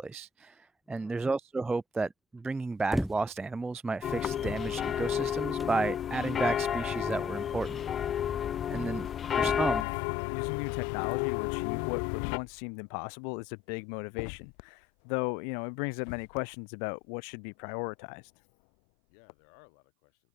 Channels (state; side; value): drops out; right; at 9.9 s